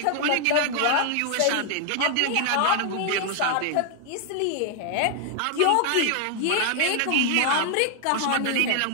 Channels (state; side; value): different; both; correlation 0.00